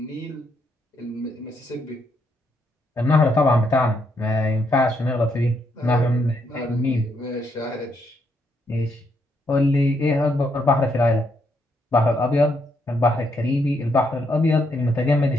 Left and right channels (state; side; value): normal; both; correlation 0.76